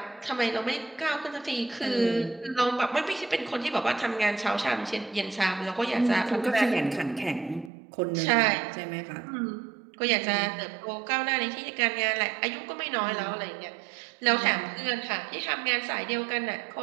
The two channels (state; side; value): drops out; left; at 7.7 s